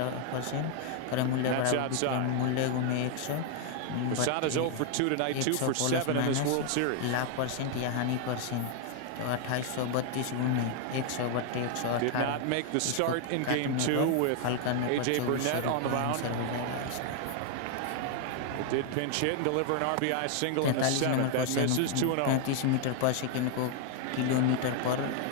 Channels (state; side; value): different; both; correlation 0.00